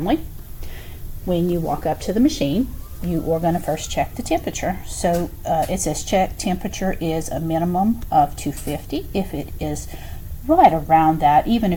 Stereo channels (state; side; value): identical; both; correlation 1.00